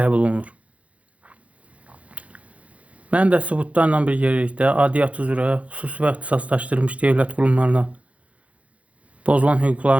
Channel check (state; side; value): late; left; 0.065 ms